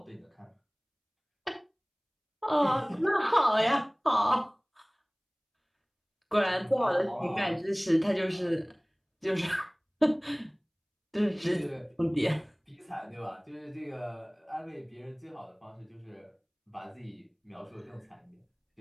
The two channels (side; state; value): both; identical; correlation 1.00